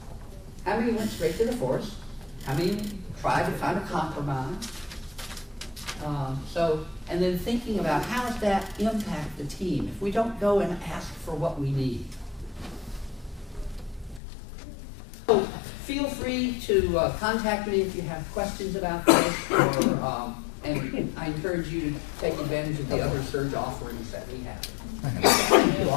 How many went straight to the force? How many tried to find a compromise? And then thinking about how does that impact the team if we don't go and ask for what we need. So feel free to contact me if you have questions about this, and I encourage you to take advantage of the other surge offerings that we have. Thank you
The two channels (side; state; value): right; drops out; at 14.2 s